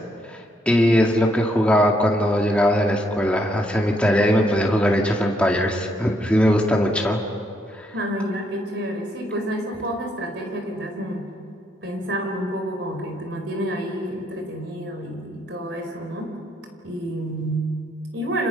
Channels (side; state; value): both; normal; correlation 0.74